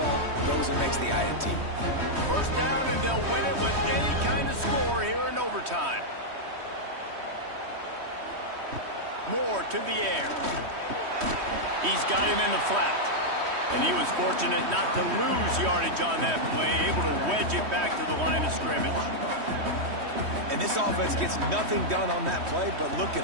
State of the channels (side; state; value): left; late; 3.1 ms